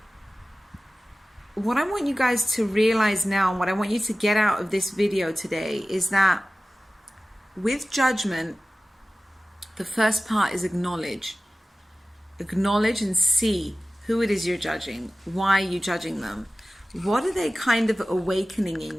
what I want you guys to realize now, and what I want you to get out of this video today, is that with judgment, the first part is acknowledge. acknowledge and see who it is you're judging. Why are you judging them? What are they kind of awakening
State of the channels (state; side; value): normal; both; correlation 0.97